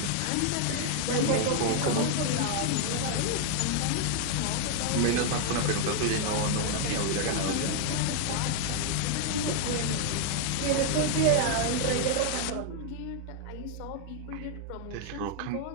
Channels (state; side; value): different; both; correlation 0.00